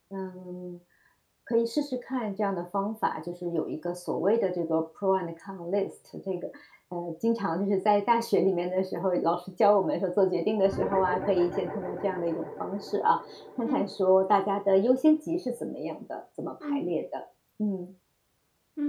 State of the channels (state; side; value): identical; both; correlation 1.00